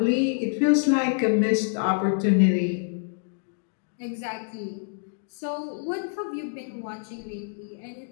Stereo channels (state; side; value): silent; right; digital silence